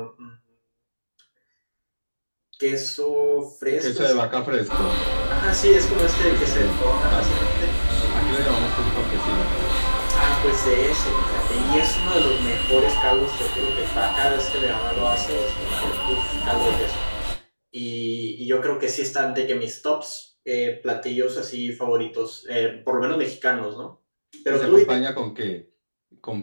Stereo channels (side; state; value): both; inverted; correlation -1.00